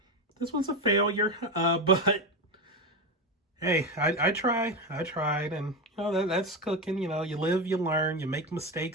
This was a failure. But hey, I tried. I tried, and that's cooking. You live, you learn. You make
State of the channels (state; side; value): normal; both; correlation 0.15